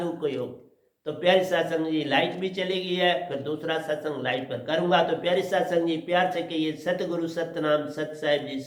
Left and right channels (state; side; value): identical; both; correlation 1.00